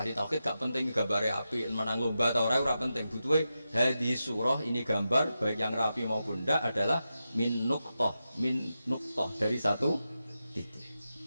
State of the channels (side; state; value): both; inverted; correlation -0.90